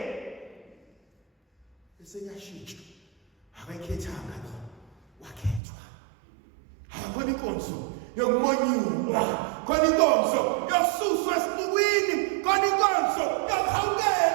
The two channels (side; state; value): left; drops out; at 5.6 s